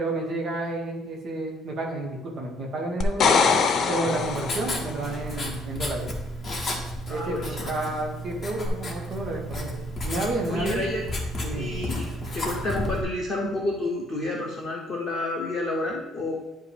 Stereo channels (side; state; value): both; normal; correlation 0.64